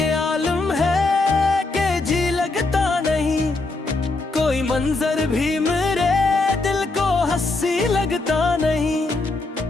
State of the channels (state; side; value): quieter; right; 3.3 dB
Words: आलम है कि जी लगता नहीं, कोई मंजर भी मेरे दिल को हंसी लगता नहीं।